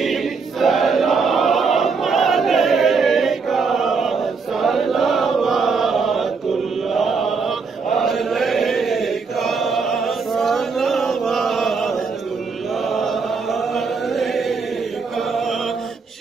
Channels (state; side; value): quieter; left; 4.9 dB